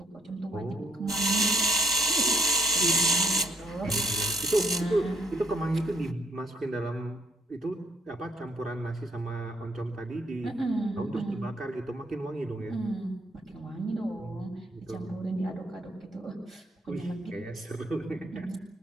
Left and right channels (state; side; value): normal; both; correlation 0.68